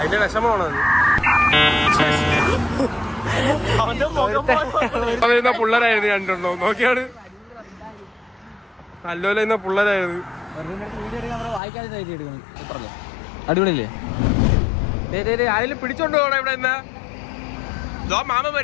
വിഷമമാണോ? പിള്ളേരായിരുന്നു രണ്ടെണ്ണോ നോക്കിയാണ്. നല്ലോല പിള്ളേരായിരുന്നു. അടിപൊളിയല്ലേ? ആരെങ്കിലും പിടിച്ചോണ്ട് പോകണം ഇവിടെ. എന്നാ മാമ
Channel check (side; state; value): right; drops out; at 11.6 s